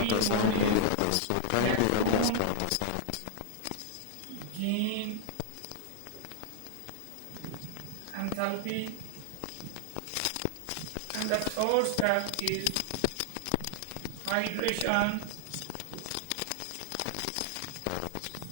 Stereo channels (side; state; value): both; different; correlation -0.01